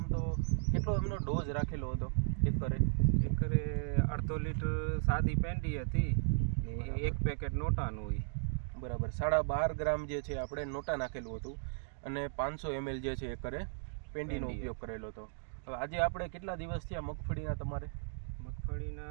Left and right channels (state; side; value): silent; left; digital silence